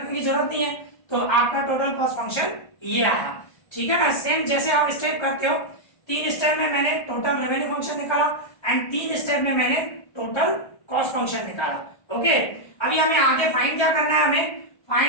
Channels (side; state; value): right; late; 1.3 ms